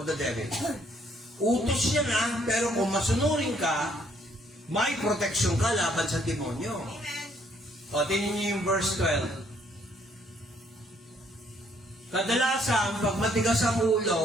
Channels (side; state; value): both; normal; correlation 0.67